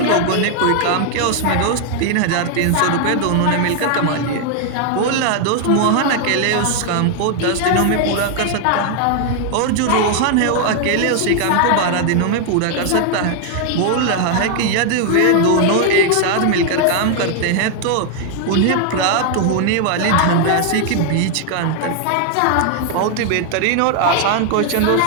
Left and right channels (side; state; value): both; different; correlation 0.00